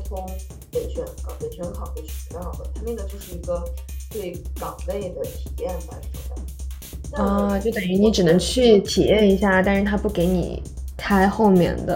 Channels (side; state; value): both; identical; correlation 1.00